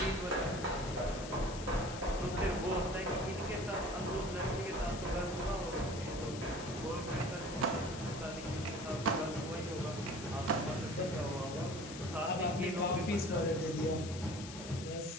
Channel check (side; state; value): left; noise; hiss, 11 dB below the sound